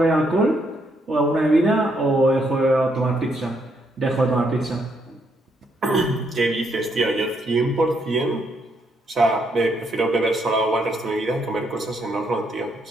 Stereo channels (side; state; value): both; normal; correlation 0.75